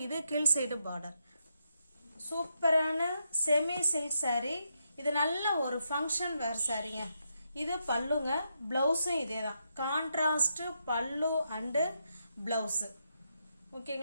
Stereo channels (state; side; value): inverted; both; correlation -0.81